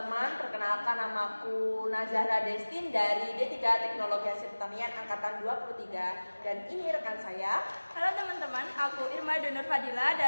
Perkenalkan, namaku Nazahra Destin dari D3 Teknologi Hasil Pertanian Angkatan 23. Dan ini rekan saya. Halo teman-teman, aku Irma Donur Fadila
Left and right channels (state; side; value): inverted; both; correlation -1.00